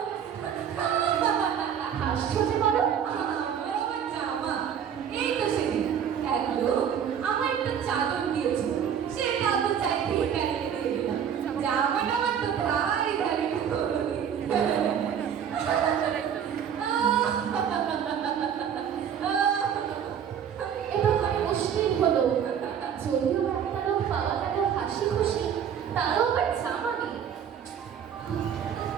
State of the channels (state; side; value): quieter; left; 8.4 dB